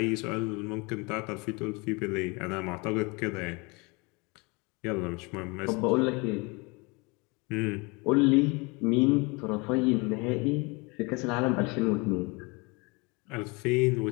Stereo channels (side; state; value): right; quieter; 27.9 dB